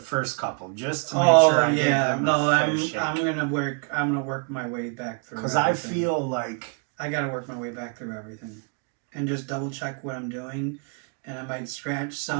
couple just to make Oh sure I yeah, give them no, a fair I'm shake. gonna work my way back through. Because I everything. feel like I gotta work my way back through everything, and just double check what I'm doing, and I might scratch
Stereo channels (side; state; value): left; quieter; 36.4 dB